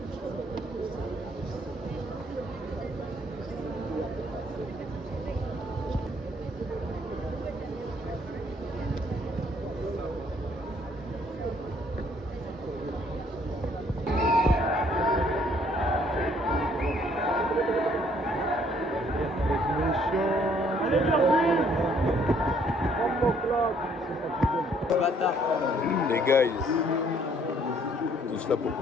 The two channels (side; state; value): both; normal; correlation 0.64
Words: Les guys, tous là pour